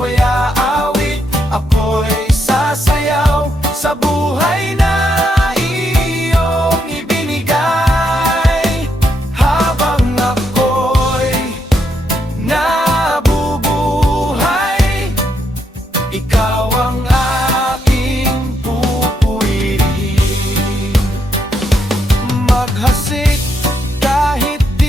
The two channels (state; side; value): normal; both; correlation 0.78